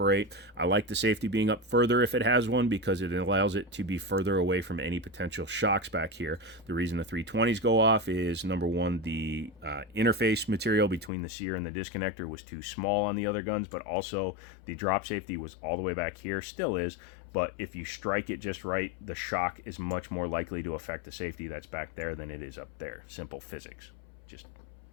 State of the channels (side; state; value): right; drops out; at 11.1 s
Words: I like the safety being up further if it has one, because it allows it to be further away from any potential shocks back here. The reason the 320s go off is, number one, the interface material between the sear and the disconnector was too small on the other guns, but also the drop safety was all the way back here, still is, but if you strike it just right, the shock is much more likely to affect the safety that's back there than it is up there. Simple physics, just